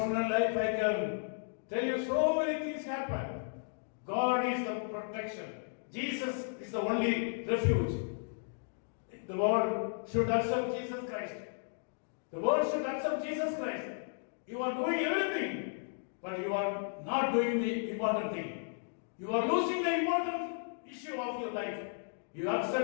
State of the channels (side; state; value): right; silent; digital silence